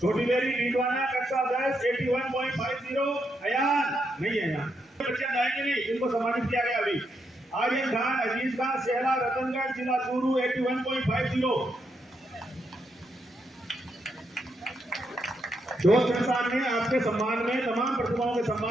छोटी बेरी डीडवाना कक्षा 10 81.50। अयान नहीं है, यहाँ बच्चे आएंगे नहीं, इनको सम्मानित किया गया अभी। आर्यन खान अजीज खान सेहला रतनगढ़ जिला चूरू 81.50। दोस्त संस्थान ने आपके सम्मान में तमाम प्रतिभाओं के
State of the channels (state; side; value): normal; both; correlation 0.80